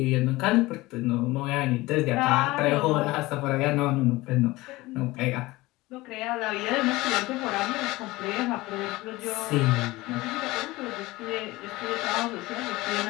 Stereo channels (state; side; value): quieter; right; 20.0 dB